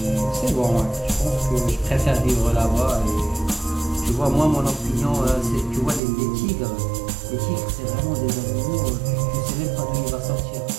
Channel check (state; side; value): drops out; left; at 6.0 s